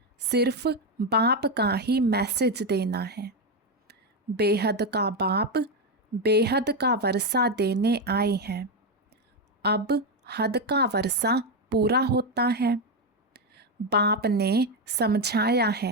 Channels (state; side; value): normal; both; correlation 0.07